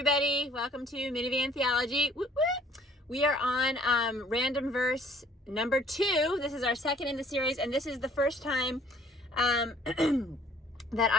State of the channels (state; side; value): normal; both; correlation 0.57